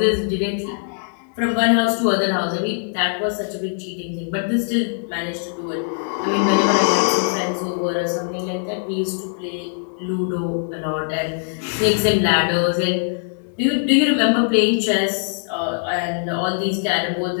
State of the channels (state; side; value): silent; right; digital silence